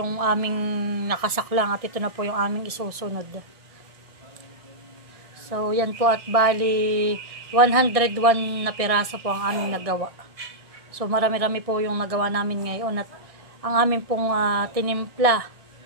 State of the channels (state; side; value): late; left; 1.6 ms